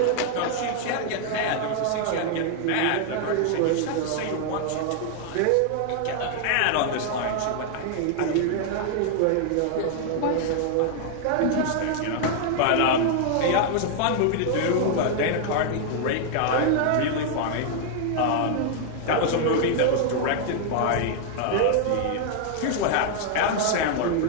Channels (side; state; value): both; different; correlation 0.00